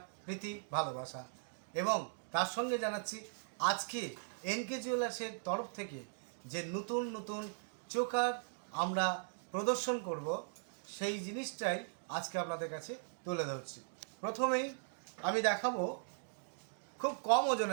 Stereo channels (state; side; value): silent; left; digital silence